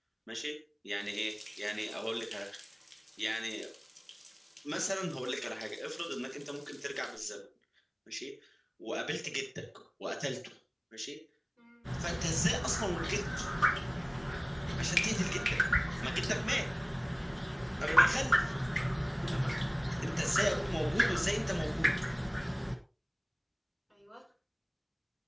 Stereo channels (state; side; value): identical; both; correlation 1.00